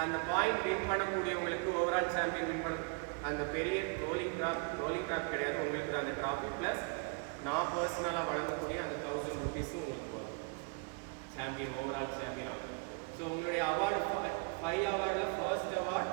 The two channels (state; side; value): quieter; left; 34.1 dB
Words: அந்த பாயிண்ட் வின் பண்ணக்கூடியவங்களுக்கு ஓவரால் சாம்பியன் வின் பண்ண அந்த பெரிய ரோலிங் ட்ராப் கிடையாது, உங்களுக்கு தான் அந்த ட்ராஃபி. ப்ளஸ் நான் பர்சனலாக வழங்கக்கூடிய அந்த 1000 rupees-ம் உங்களுக்கு வரும். சாம்பியன், ஓவரால் சாம்பியனாக. ஸோ உங்களுடைய அவார்டு 5 அவார்டில் ஃபர்ஸ்ட் அவார்டு